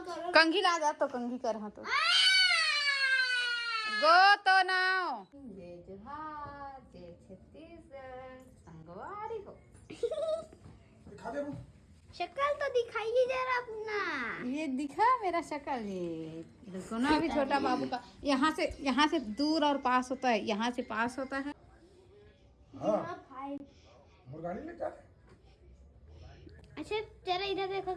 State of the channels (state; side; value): identical; both; correlation 1.00